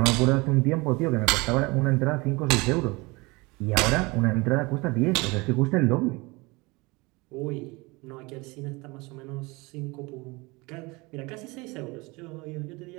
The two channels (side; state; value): left; quieter; 24.9 dB